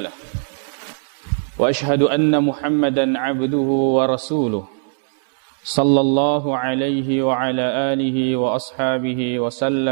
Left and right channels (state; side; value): silent; left; digital silence